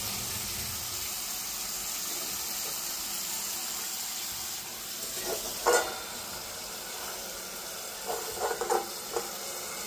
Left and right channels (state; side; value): identical; both; correlation 1.00